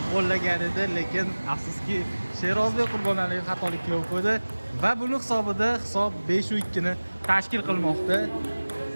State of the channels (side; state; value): both; inverted; correlation -1.00